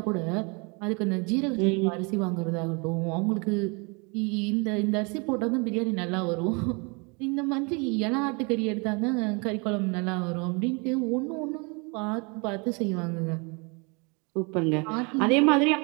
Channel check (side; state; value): left; quieter; 31.5 dB